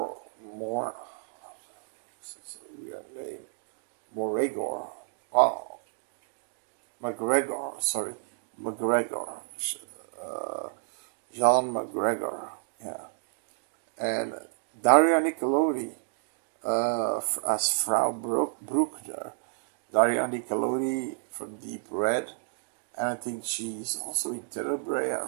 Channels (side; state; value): left; silent; digital silence